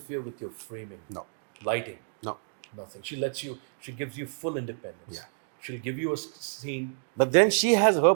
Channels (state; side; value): silent; left; 56 dB below the other